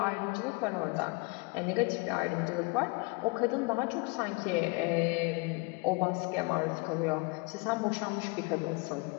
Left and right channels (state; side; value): quieter; right; 28.8 dB